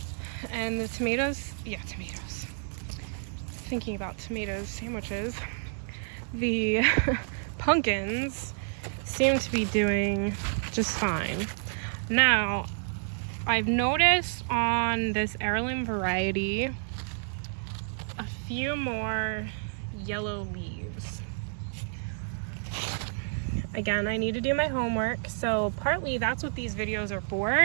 And the tomatoes, thinking about tomatoes sandwiches, the pumpkins seem to be doing just fine. Now, I've noticed on this heirloom variety a few more yellow leaves. Again, I need to do my homework, so partly that's what these videos are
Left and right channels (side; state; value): left; silent; digital silence